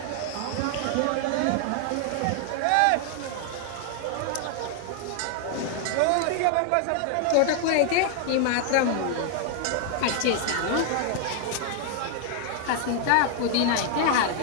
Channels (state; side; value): different; both; correlation 0.00